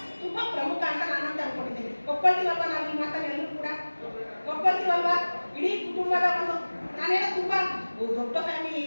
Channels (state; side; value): inverted; both; correlation -1.00